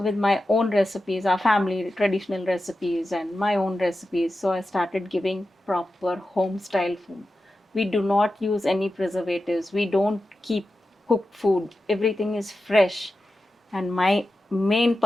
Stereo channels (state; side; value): normal; both; correlation 0.92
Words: my own recipes, our family traditional recipes and my own recipes. So I started giving proper home style food. We do not use any preservatives. We don't keep cooked food. Everything is fresh. And my main